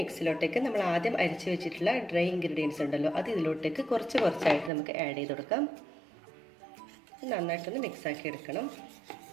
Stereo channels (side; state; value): left; drops out; at 4.7 s